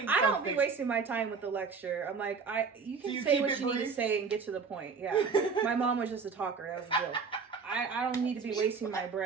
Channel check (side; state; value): left; quieter; 5.3 dB